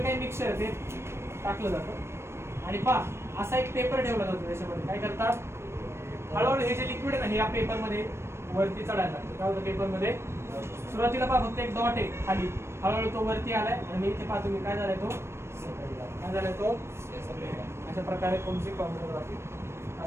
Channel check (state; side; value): late; left; 0.13 ms